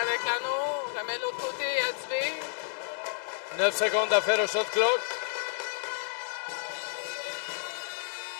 avec l'anneau. Remet de l'autre côté à Dubé. 9 secondes à faire au shot clock.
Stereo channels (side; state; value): right; silent; digital silence